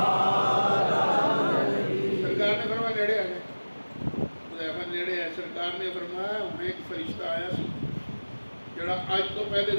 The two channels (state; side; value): inverted; both; correlation -1.00